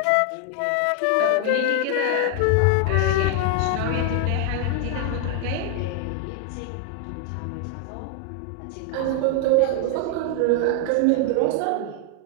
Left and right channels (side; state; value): both; different; correlation 0.00